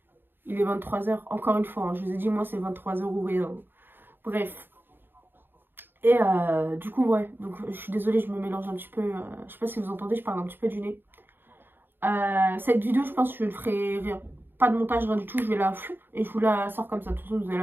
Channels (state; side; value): late; left; 0.097 ms